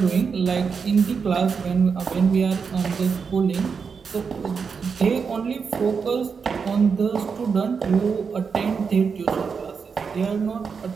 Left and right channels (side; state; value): left; quieter; 5.7 dB